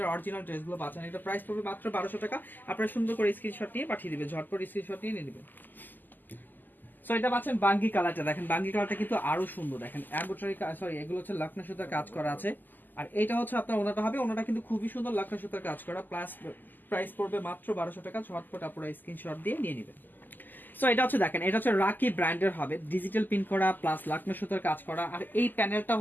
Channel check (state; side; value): late; right; 0.087 ms